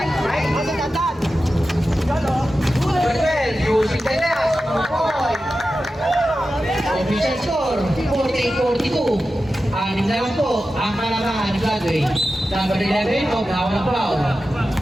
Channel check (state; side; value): normal; both; correlation 0.93